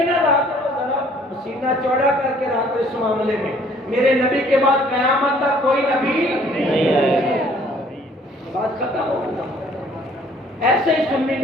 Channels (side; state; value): both; normal; correlation 0.58